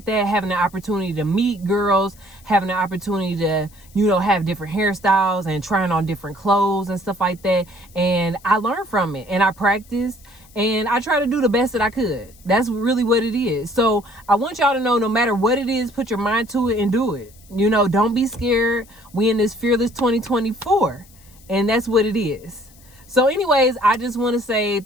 that, having the opportunity to meet girls, having the opportunity to, you know, have different hairstyles and trying on different clothes and stuff like that. And I learned from it, and I practiced, and I try to do the best that I could. That's really what it is. So I want y'all to know, no matter what it is, put your mind to it and do it. You know, don't be scared. We in this fearless 2024, and that's what it is. So anyways, I just want to say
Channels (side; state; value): left; noise; hiss, 26 dB below the sound